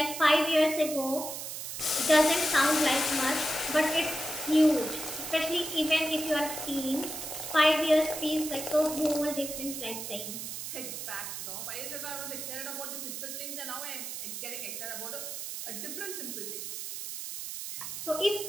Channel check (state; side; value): noise; right; hiss, 7 dB below the sound